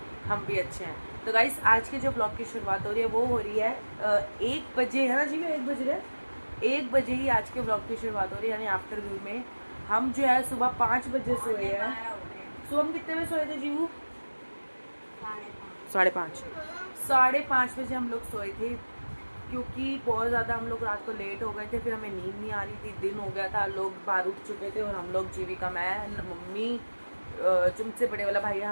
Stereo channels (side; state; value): both; inverted; correlation -1.00